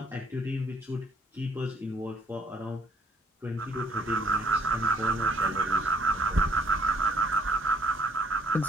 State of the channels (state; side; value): normal; both; correlation 0.63